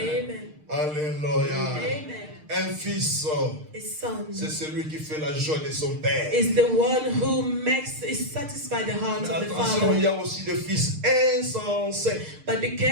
Alléluia. Amen. Un fils, A son c'est celui qui fait la joie de son père. is the one who satisfies the heart Mais of the attention, il y father. a aussi des fils insensés But be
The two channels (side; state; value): left; late; 6.6 ms